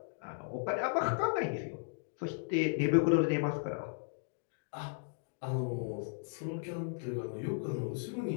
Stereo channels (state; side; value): silent; right; digital silence